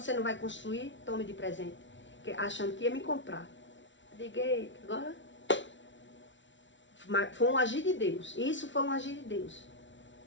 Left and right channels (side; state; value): right; late; 0.55 ms